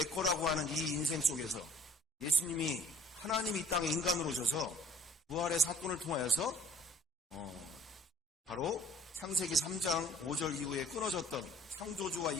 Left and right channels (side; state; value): both; normal; correlation 0.53